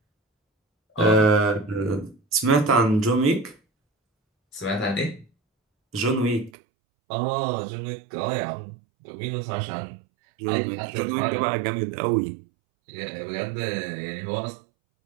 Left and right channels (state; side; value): drops out; left; at 6.5 s